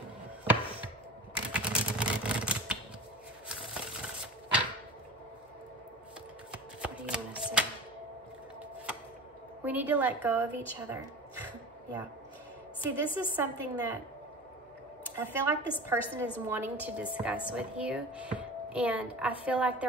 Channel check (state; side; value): normal; both; correlation 0.35